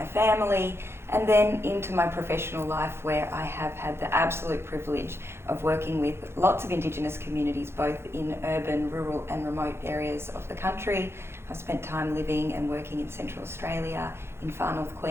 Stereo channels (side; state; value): left; late; 0.12 ms